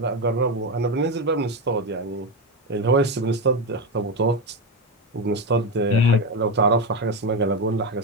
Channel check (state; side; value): normal; both; correlation 0.12